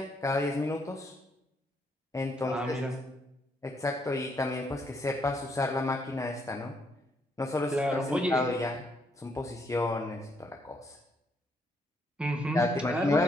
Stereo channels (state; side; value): normal; both; correlation 0.73